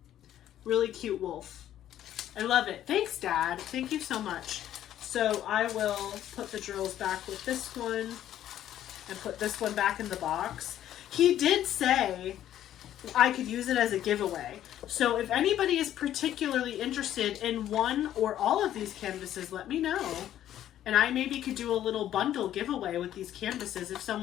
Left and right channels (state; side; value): quieter; right; 11.8 dB